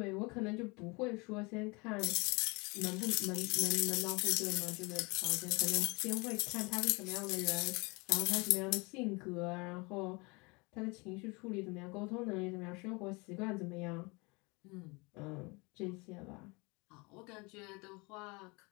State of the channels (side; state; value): right; quieter; 27.4 dB